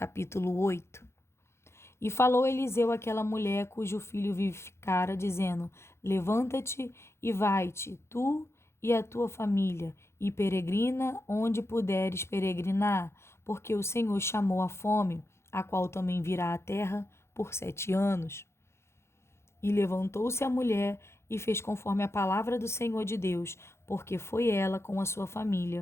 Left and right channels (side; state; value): right; late; 0.13 ms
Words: 8. E falou Eliseu àquela mulher cujo filho vivificara, dizendo: Levanta-te e vai-te, tu e a tua família, e peregrina onde puderes peregrinar, porque o Senhor chamou a fome a qual também virá à terra por 7 anos. E levantou-se a mulher e fez conforme a palavra do Senhor de Deus, porque foi ela com a sua